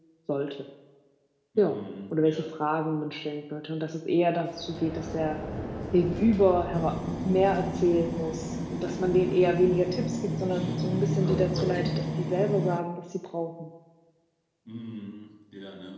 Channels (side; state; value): both; identical; correlation 1.00